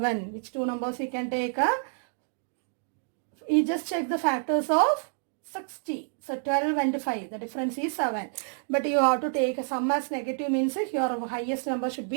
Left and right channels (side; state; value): left; silent; 59 dB below the other